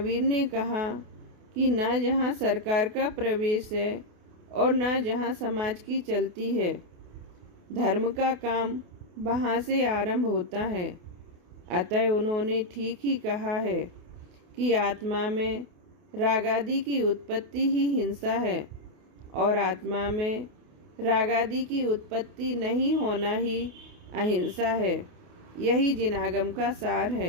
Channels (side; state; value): left; late; 28 ms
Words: ने कहा कि ना जहाँ सरकार का प्रवेश है और ना जहाँ समाज की चलती है। धर्म का काम वहाँ से आरंभ होता है। अतः उन्होंने ठीक ही कहा है कि आत्मा में रागादि की उत्पत्ति ही हिंसा है और आत्मा में रागादि की उत्पत्ति नहीं होना ही अहिंसा है। यही जिनागम का सार